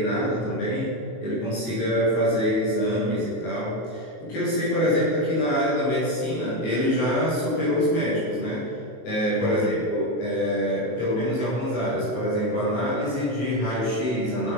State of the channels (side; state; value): right; late; 21 ms